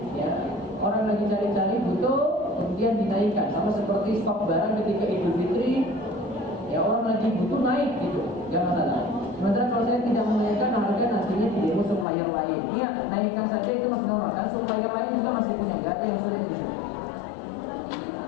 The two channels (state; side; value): drops out; right; at 12.1 s